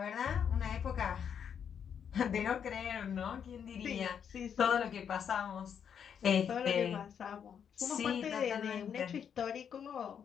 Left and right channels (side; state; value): right; quieter; 7.9 dB